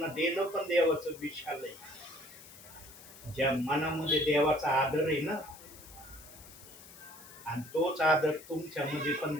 देणं पण देवाचं विशाल आहे. ज्या मनामध्ये देवाचा आदर आहे ना, आणि तोच आदर तुमच्यामध्ये पण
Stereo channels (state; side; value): noise; left; hiss, 18 dB below the sound